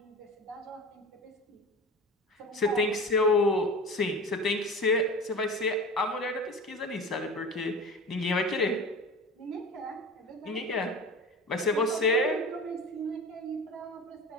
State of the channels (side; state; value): both; normal; correlation 0.33